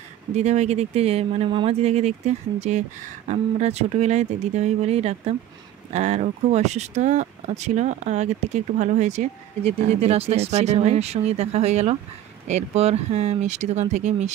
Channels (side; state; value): left; quieter; 11.9 dB